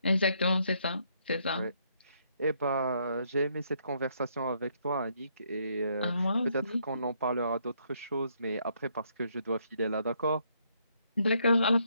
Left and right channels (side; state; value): both; inverted; correlation -0.72